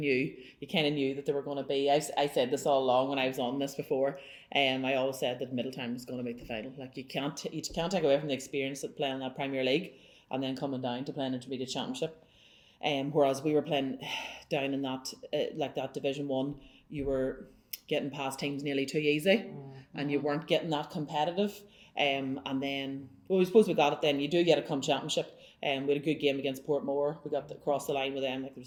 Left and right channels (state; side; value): identical; both; correlation 1.00